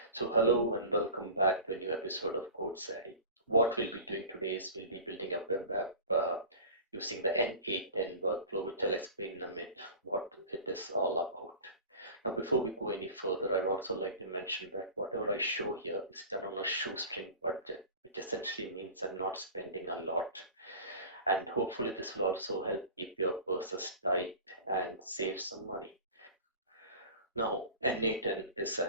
So hello and welcome back to a new episode of Code Savvy. What we'll be doing today is we'll be building a web app using the n8n workflow, which I'll explain in a minute what it is all about. Now, before we go any further, I would also like to mention that whatever I show here is done on a shoestring budget, which essentially means I'm not spending a lot. And hopefully this will also help keep your purses tight and save some money. Now, n8n is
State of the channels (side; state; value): both; inverted; correlation -0.36